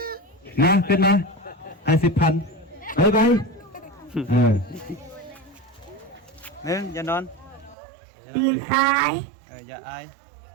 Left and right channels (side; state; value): left; drops out; at 7.8 s